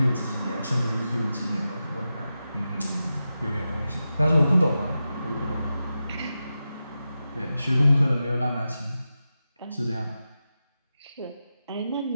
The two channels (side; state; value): both; inverted; correlation -0.91